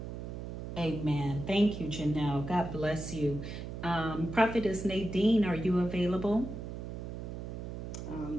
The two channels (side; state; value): right; noise; hum, 7 dB below the sound